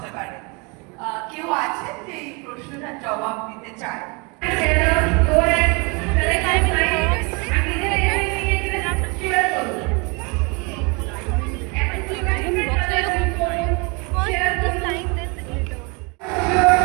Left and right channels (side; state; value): left; quieter; 30.5 dB